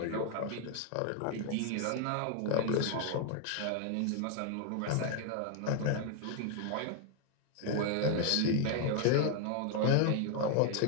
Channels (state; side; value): different; both; correlation 0.00